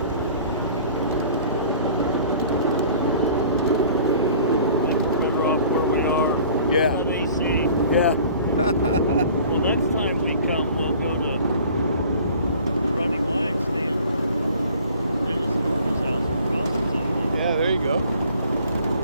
Better off where we are. Yeah. With AC. Yeah. Well, next time we come, we'll go to Running Wine, stay in Dennis Norton's house in Providence. Yeah, there you go.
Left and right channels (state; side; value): inverted; both; correlation -0.49